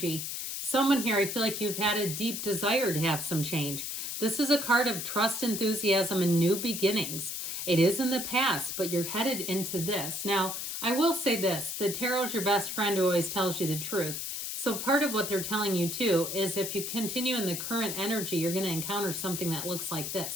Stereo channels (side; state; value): left; noise; hiss, 4 dB below the sound